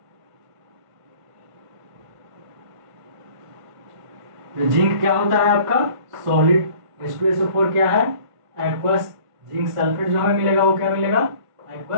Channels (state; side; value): late; left; 1.5 ms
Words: तो जिंक क्या होता है आपका सॉलिड, H2SO4 क्या है एक्वस, जिंक सल्फेट जो हमें मिलेगा वो क्या मिलेगा